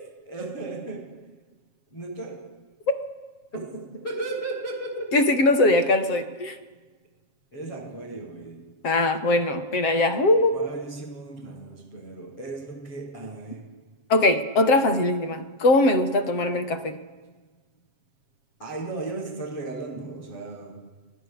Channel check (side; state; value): right; late; 7.4 ms